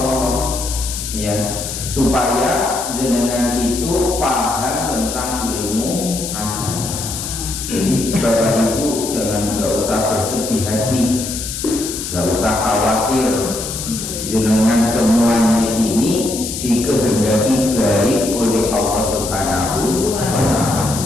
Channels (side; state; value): left; noise; hiss, 6 dB below the sound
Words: ya, supaya jenengan itu paham tentang ilmu agama. Jadi Bapak Ibu nggak usah bersedih hati, nggak usah khawatir, jenengan semuanya ini dikehendaki baik oleh Allah Subhanahu wa ta'ala.